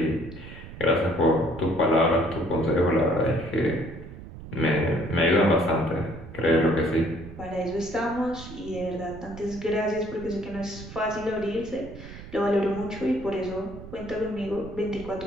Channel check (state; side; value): noise; right; rumble, 14 dB below the sound